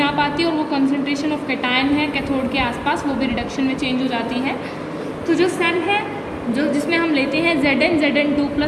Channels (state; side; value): identical; both; correlation 1.00